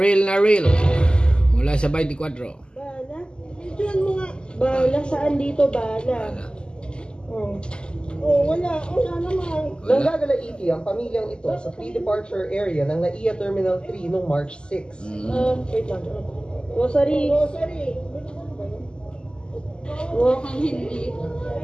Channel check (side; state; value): right; late; 0.048 ms